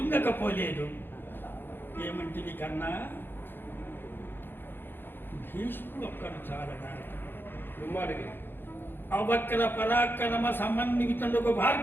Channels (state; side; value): late; right; 0.10 ms